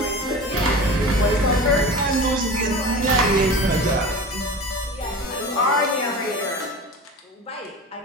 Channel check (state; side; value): normal; both; correlation 0.34